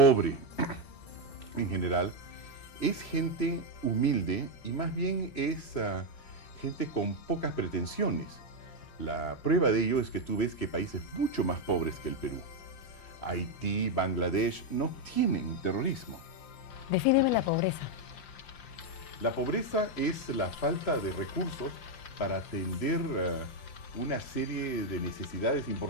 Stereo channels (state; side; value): late; right; 5.7 ms